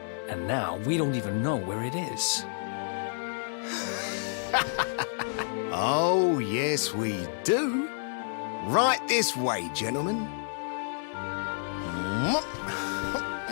And now we don't even know where it is. Oh, yes, we do. Right this way, gentlemen.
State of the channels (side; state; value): right; silent; digital silence